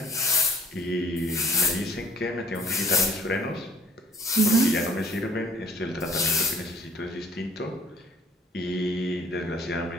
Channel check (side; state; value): both; normal; correlation 0.56